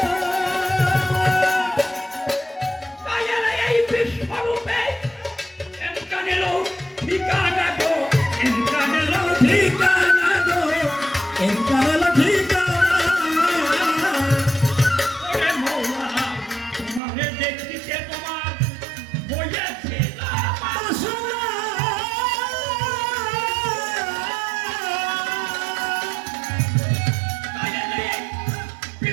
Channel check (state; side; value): drops out; left; at 17.0 s